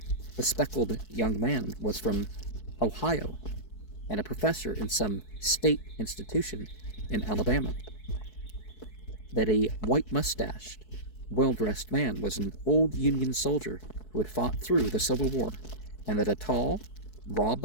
bespectacled young man was from Ohio and a professor in some state institution in Alabama. That a white-mustached, well-dressed man was an old Union soldier who had fought through the Civil War, and that a tall,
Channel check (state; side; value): late; right; 4.7 ms